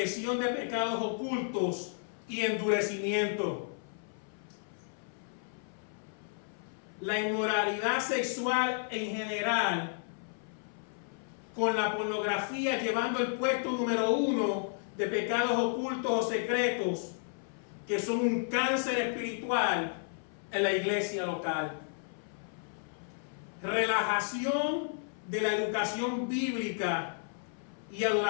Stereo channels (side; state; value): right; silent; 56 dB below the other